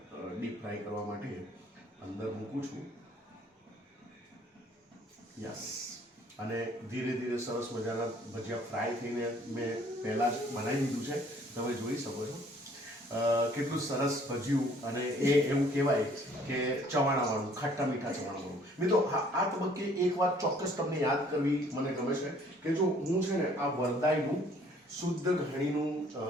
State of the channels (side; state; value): both; normal; correlation 0.59